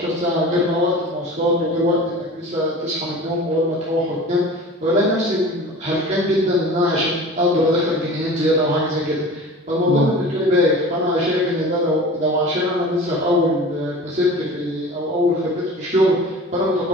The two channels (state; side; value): normal; both; correlation 0.38